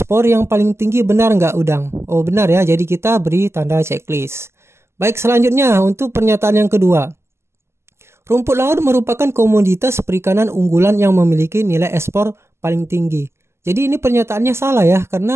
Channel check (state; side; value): late; left; 0.13 ms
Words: yang paling tinggi, benar nggak udang? Oh, benar ya. Jadi kita beri tanda checklist. Baik, selanjutnya untuk pernyataan yang kedua. Rumput laut merupakan komoditas perikanan unggulan yang memiliki nilai ekspor paling tinggi. Jadi ini pernyataannya salah ya,